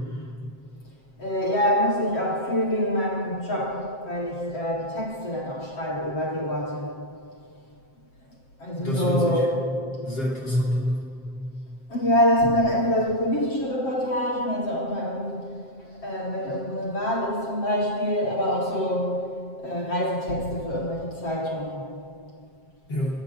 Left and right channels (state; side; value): late; right; 7.6 ms